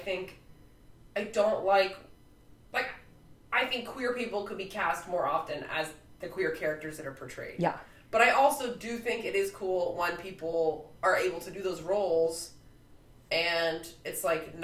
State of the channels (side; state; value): both; identical; correlation 1.00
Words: queer people could be cast more often as the queer characters that are portrayed. Yeah. But I also do think it is cool when people are able to do those roles and it's like